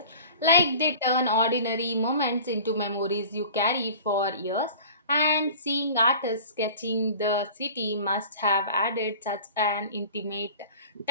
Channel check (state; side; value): inverted; both; correlation -0.41